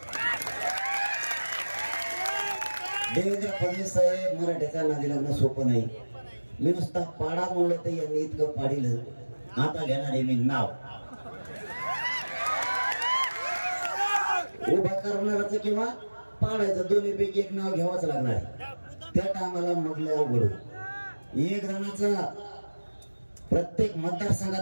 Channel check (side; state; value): both; inverted; correlation -1.00